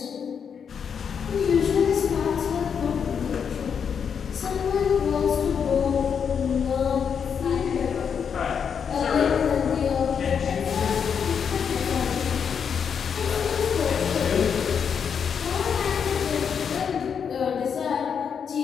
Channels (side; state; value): right; quieter; 7.1 dB